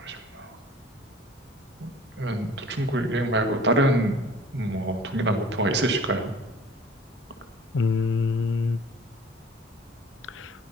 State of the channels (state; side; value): normal; both; correlation 0.48